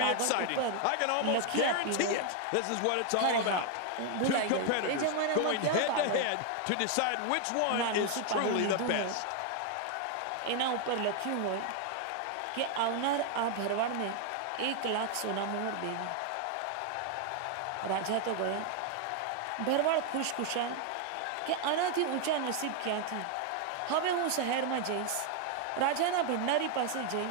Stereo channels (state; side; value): different; both; correlation 0.00